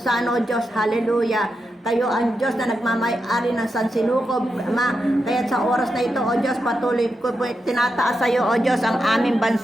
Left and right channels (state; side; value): normal; both; correlation 0.87